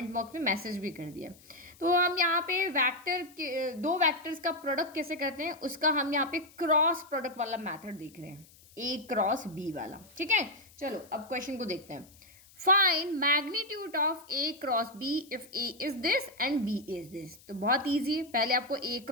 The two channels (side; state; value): left; noise; hiss, 25 dB below the sound